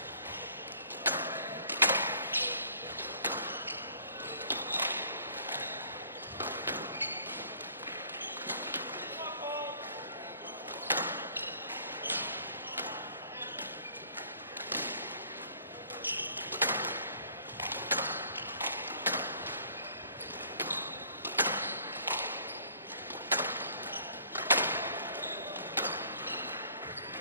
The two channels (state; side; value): inverted; both; correlation -0.57